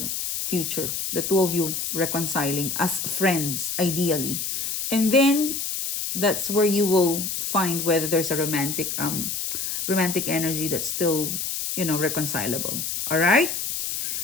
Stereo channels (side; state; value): left; noise; hiss, 3 dB below the sound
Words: future, the two of you reconciling as friends, ideally. And then that's where you will find whether there's a romantic energy that's still, reconcilable. All right?